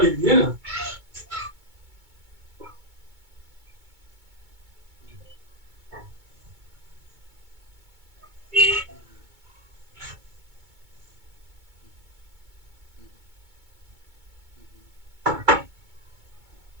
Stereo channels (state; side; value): late; left; 2.2 ms